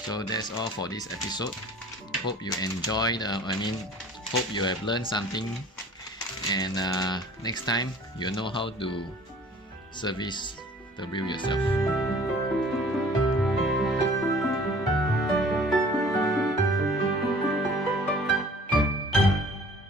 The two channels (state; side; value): normal; both; correlation 0.49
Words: So that's all for this episode. Hope you enjoyed, hope you have learned something, and next time you'll know how to service the reel yourself.